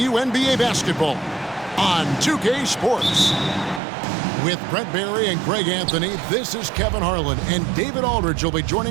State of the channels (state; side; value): drops out; left; at 3.8 s